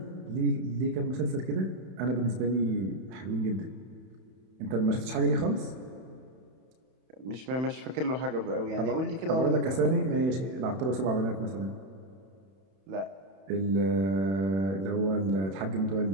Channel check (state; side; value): late; left; 31 ms